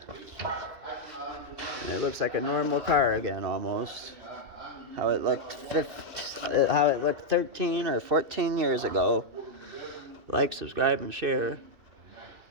And it looks like a normal car again, almost. How it looked 13 or 14 years ago. Like, subscribe, and share.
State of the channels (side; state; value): left; late; 2.6 ms